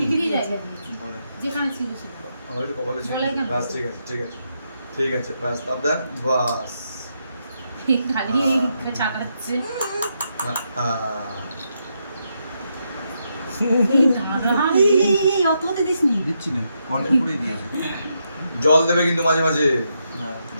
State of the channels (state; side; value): inverted; both; correlation -0.81